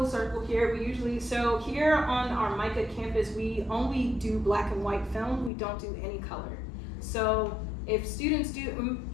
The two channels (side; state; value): right; drops out; at 5.5 s